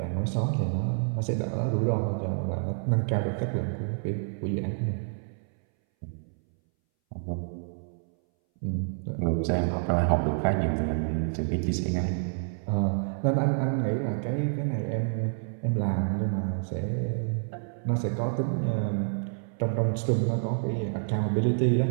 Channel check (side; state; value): left; silent; 59 dB below the other